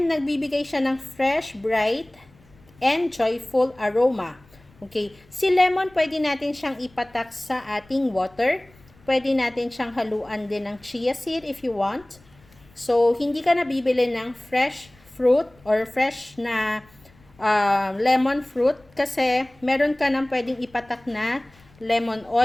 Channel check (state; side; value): noise; left; rumble, 28 dB below the sound